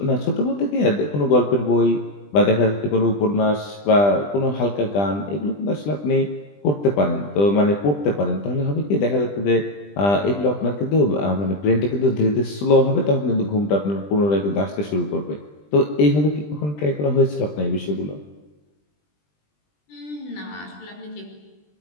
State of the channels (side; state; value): right; late; 20 ms